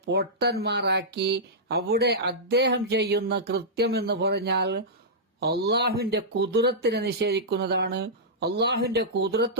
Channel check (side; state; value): both; normal; correlation -0.12